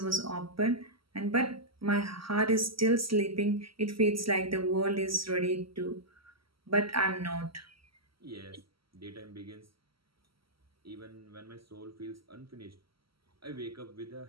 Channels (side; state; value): left; late; 0.75 ms